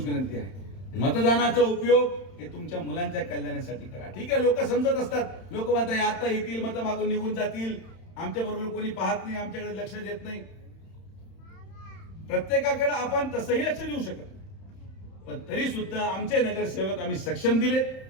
विनंती आहे, मतदानाचा उपयोग हे तुमच्या मुलांच्या कल्याणासाठी करा. ठीक आहे, लोक समजत असतात. लोक म्हणतात आता येतील, मतं मागून निघून जातील, आमच्या बरोबर कोणी पाहत नाही, आमच्याकडे लक्ष देत नाही. प्रत्येकाकडे आपण तसंही लक्ष देऊ शकत नाही. पण तरी सुद्धा आमचे नगरसेवक आम्ही सक्षम दिलेत,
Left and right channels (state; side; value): late; right; 31 ms